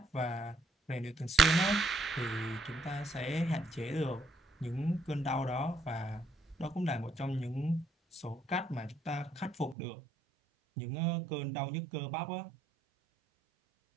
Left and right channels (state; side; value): drops out; left; at 9.8 s